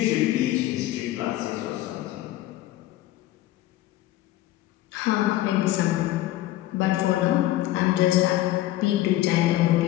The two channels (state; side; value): quieter; right; 15.2 dB